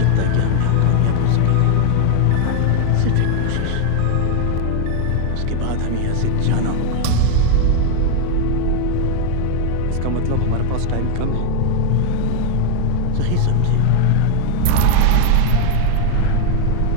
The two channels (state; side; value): different; both; correlation 0.01